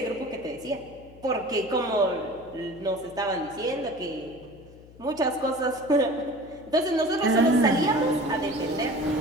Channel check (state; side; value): noise; left; hum, 22 dB below the sound